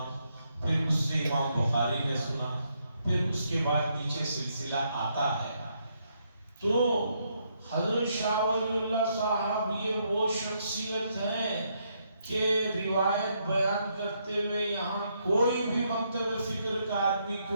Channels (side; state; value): both; inverted; correlation -0.76